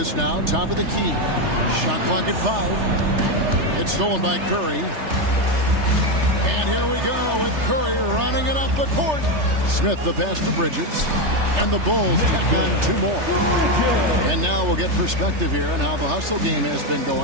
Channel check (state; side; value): late; left; 3.3 ms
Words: now top of the key. Shot clock at 5. It's stolen by Curry. And here we go with Curry running it up the court. Smith the pass to Bridges. And the Bulls tack on 2 more. And now we'll get perspective here on how the hustle game has been